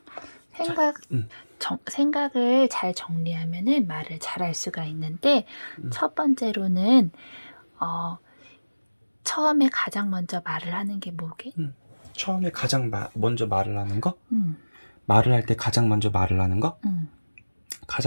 이거. 생각 생각을 잘 정리하면은 말을 잘할 수가 있는데 첫 번째로는 처음에 가장 먼저 말을 하는 게 뭐게? 처음에 가장 먼저 말을 하는 거? 응. 말을 할 때 가장 먼저 말을 하는 거? 응.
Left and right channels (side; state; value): both; inverted; correlation -1.00